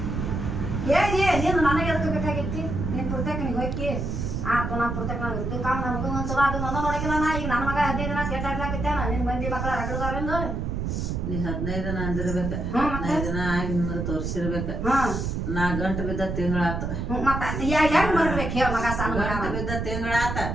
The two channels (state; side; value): noise; right; rumble, 3 dB below the sound